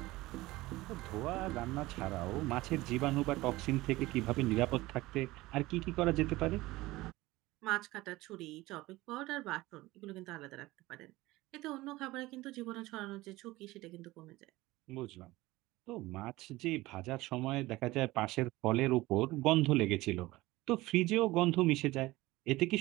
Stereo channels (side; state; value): left; quieter; 19.1 dB